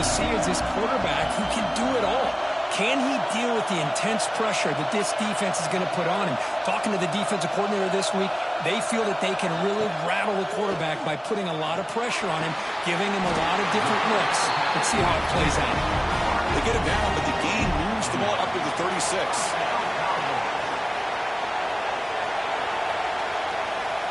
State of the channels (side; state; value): both; identical; correlation 1.00